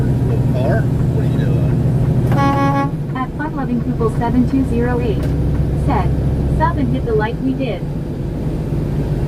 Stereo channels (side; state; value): both; identical; correlation 1.00